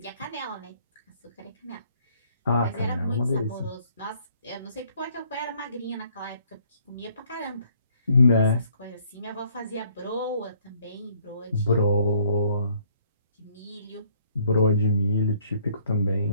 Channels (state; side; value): inverted; both; correlation -0.63